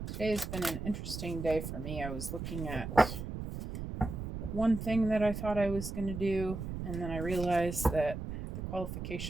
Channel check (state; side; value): noise; right; rumble, 6 dB below the sound